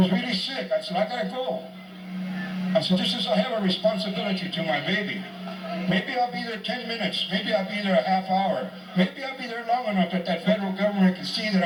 really sick. I said, I gotta go. I said, I have a responsibility to my baby. Maybe I'll be there 10 minutes. Maybe I'll be there a half hour. Maybe I'll be there long enough that that federal government can see that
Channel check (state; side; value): identical; both; correlation 1.00